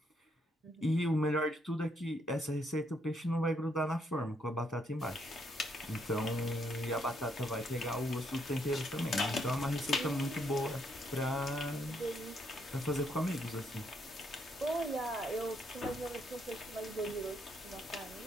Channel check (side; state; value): both; normal; correlation 0.74